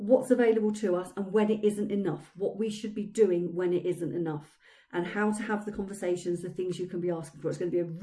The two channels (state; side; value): identical; both; correlation 1.00